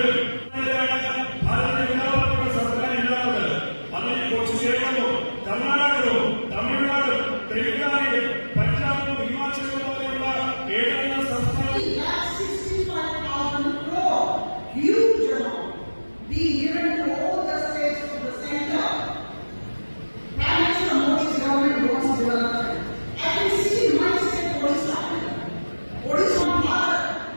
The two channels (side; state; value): both; inverted; correlation -1.00